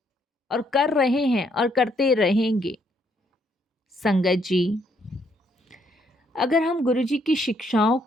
और कर रहे हैं और करते रहेंगे। संगत जी, अगर हम गुरुजी की शिक्षाओं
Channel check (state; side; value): normal; both; correlation 0.71